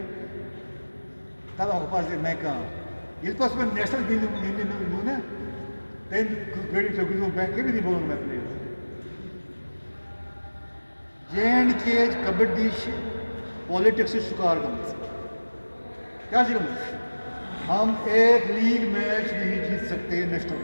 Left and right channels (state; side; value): inverted; both; correlation -1.00